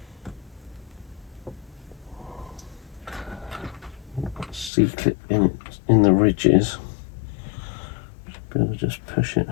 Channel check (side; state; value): right; drops out; at 4.7 s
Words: C-clip in the ridges. Be able to just push it